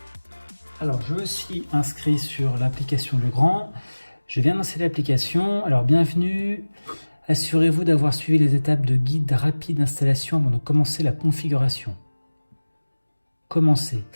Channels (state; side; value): inverted; both; correlation -1.00